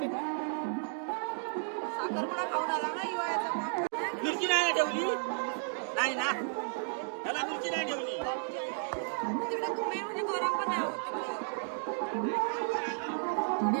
साखरपुडा खाऊन आला ना हिवाळ्याचा. मिरची नाही ठेवली नाही ना, त्याला मिरची नाही ठेवली. तिकडे तुम्ही म्हणजे गरम पण नाही होत.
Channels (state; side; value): silent; left; digital silence